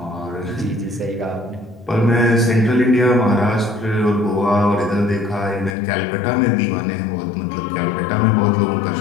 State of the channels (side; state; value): right; drops out; at 5.8 s